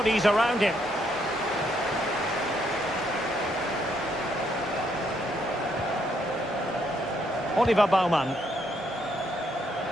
around him. Oliver Baumann.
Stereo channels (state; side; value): normal; both; correlation 0.73